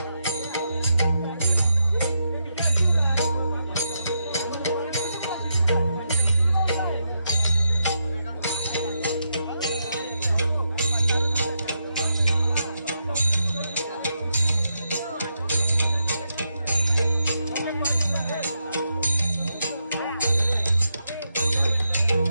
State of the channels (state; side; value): inverted; both; correlation -0.83